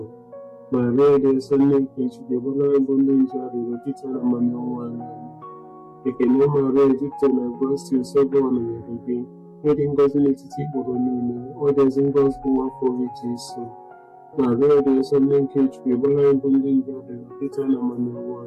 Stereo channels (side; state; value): both; identical; correlation 1.00